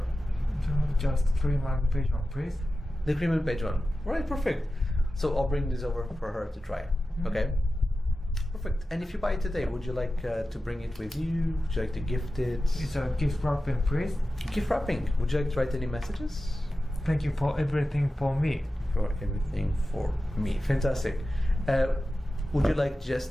Just cream and beige one, please. The cream and beige one. Right. Perfect. So I'll bring this over for her to try. Mm-hmm. Okay. Perfect. And if you buy it today, would you like to bring it with you? Would you like to gift it? It's a gift wrapping, please. Gift wrapping. Would you like to write any messages? Thank you for everything for me. For everything for me. Fantastic. Would you like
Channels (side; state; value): both; normal; correlation 0.93